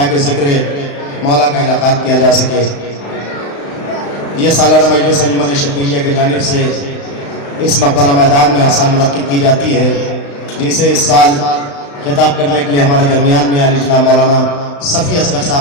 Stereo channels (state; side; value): late; right; 35 ms